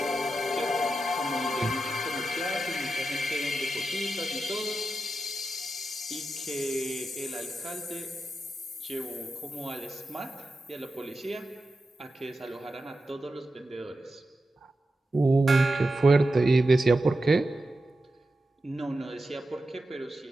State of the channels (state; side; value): normal; both; correlation 0.90